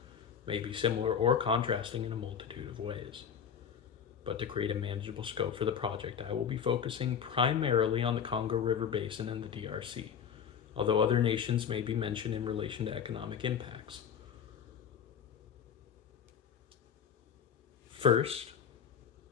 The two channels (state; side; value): quieter; right; 7.7 dB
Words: may be similar or contrasting in a multitude of ways. But to create a manageable scope for the project, I will be focusing primarily on the Congo River Basin and the DRC, although other nations may be mentioned in relation to economic impacts. First,